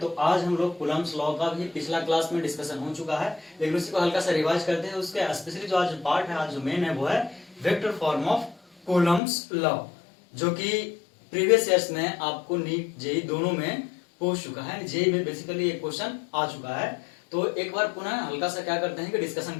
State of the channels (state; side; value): drops out; right; at 9.2 s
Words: आज हम लोग कूलम्ब्स लॉ का भी पिछला क्लास में डिस्कशन हो चुका है, लेकिन उसी को हल्का सा रिवाइज करते हैं। उसके स्पेशली जो आज पार्ट है, आज जो मेन है वो है vector form of Coulomb's law, जो कि प्रीवियस ईयर्स में आपको नीट जेई दोनों में पूछ चुका है। जेई में बेसिकली एक क्वेश्चन आ चुका है। तो एक बार पुनः हल्का सा क्या करते हैं कि डिस्कशन